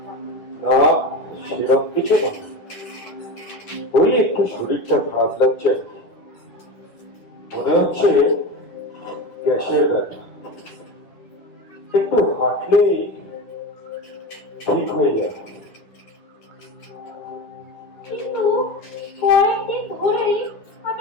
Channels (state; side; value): late; right; 10 ms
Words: না, সেরকম কিছু না। ওই একটু শরীরটা খারাপ লাগছে, মনে হচ্ছে গ্যাসের ব্যথা। একটু হাঁটলেই ঠিক হয়ে যাবে। কিন্তু কয়েকদিন ধরেই আমি